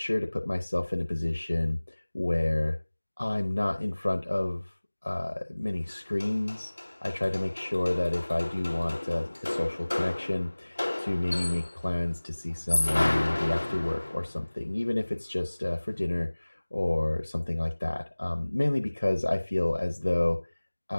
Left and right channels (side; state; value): both; inverted; correlation -1.00